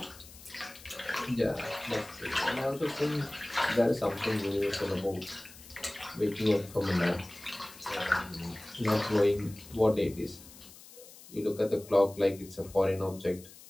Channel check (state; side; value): noise; left; hiss, 19 dB below the sound